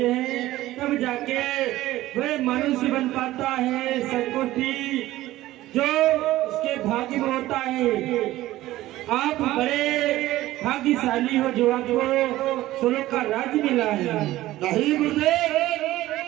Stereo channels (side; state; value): left; quieter; 16.0 dB